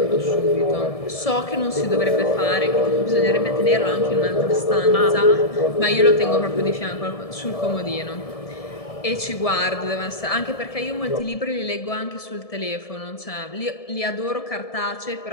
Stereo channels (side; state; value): right; late; 1.7 ms